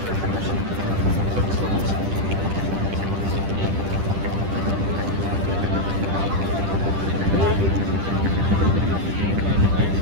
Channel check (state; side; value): late; left; 10 ms